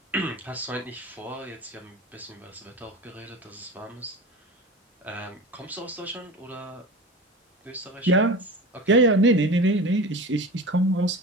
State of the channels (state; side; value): normal; both; correlation 0.32